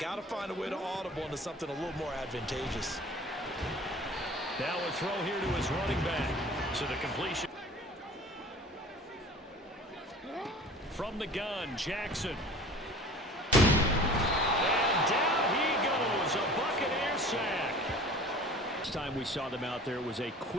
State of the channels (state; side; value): normal; both; correlation 0.43